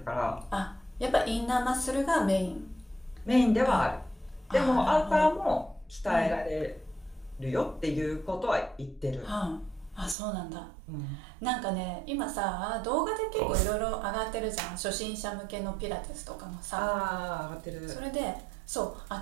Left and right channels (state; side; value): drops out; left; at 10.2 s